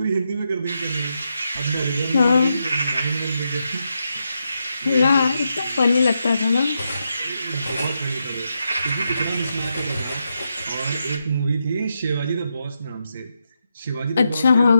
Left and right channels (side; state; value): both; inverted; correlation -0.84